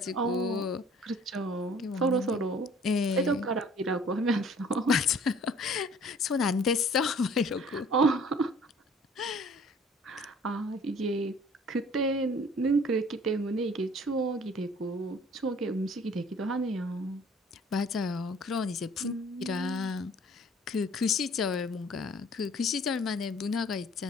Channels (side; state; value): both; normal; correlation 0.53